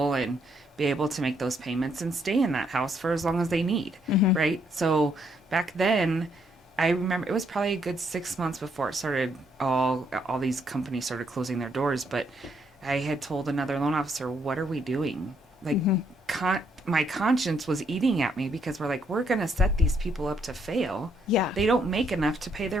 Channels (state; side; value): normal; both; correlation 0.72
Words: and be able to make those payments and stay in that house for as long as they need. Right. So back then, I remember it was probably a good 6 months before it started. All these companies started closing their doors, but I had told another loan officer, "What are we doing?" Like, my conscience was eating at me because we're going to set these people up to fail. Yeah. They don't make enough to pay